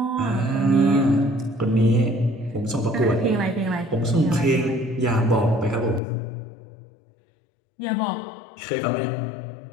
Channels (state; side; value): drops out; right; at 6.0 s